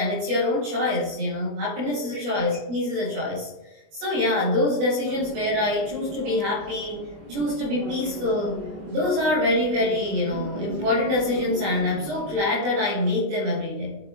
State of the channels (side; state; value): left; late; 24 ms